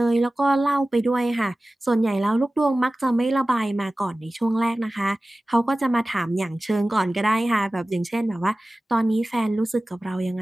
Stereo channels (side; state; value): both; normal; correlation 0.97